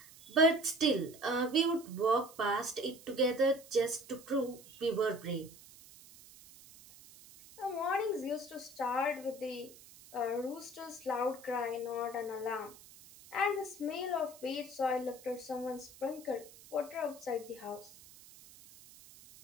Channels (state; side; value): noise; right; hiss, 20 dB below the sound